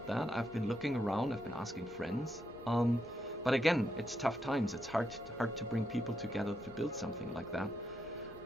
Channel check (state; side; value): normal; both; correlation 0.81